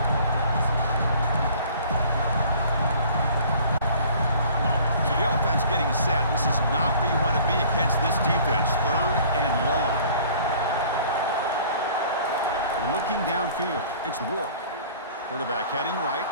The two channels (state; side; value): inverted; both; correlation -0.51